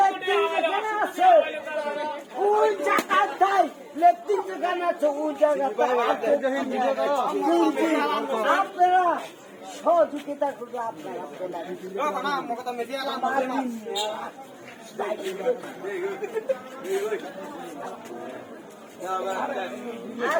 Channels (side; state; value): both; identical; correlation 1.00